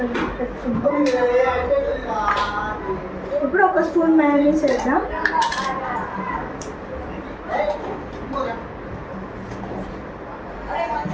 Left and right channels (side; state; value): both; identical; correlation 1.00